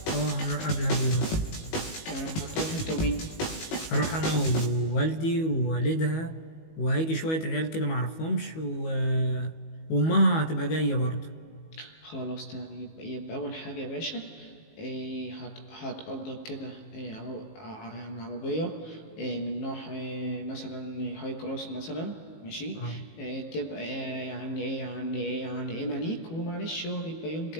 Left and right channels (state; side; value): late; right; 19 ms